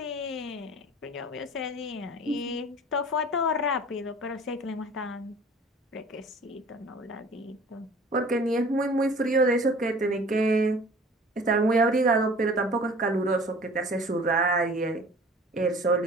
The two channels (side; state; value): both; normal; correlation 0.47